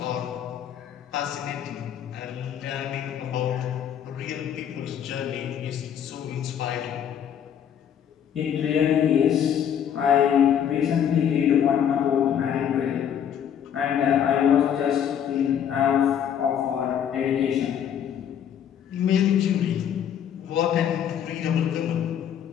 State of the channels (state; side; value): quieter; right; 9.1 dB